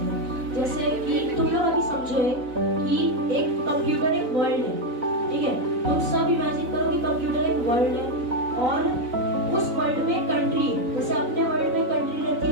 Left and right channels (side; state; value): left; late; 4.0 ms